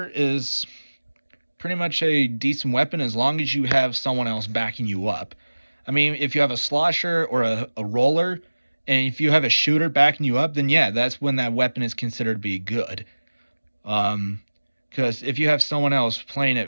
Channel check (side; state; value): both; inverted; correlation -1.00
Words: is pretty much a decent weapon as long as you have someone else backing you up. I mean, if you have a Slosher or a roller, and if you have a shooter backing you up, then yeah, that's when that weapon is considered to be good. Because if you have someone else playing